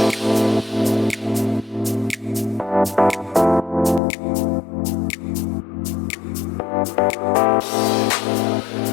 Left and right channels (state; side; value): drops out; right; at 4.0 s